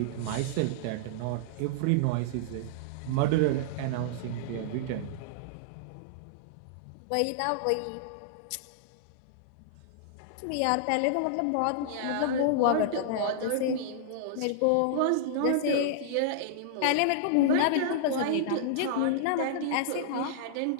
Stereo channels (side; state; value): both; different; correlation -0.02